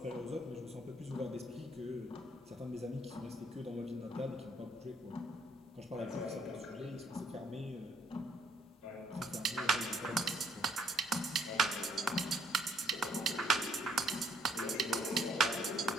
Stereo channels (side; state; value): both; normal; correlation 0.68